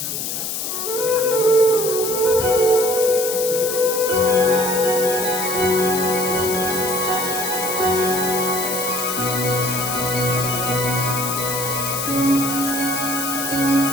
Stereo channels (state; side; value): noise; left; hiss, 3 dB below the sound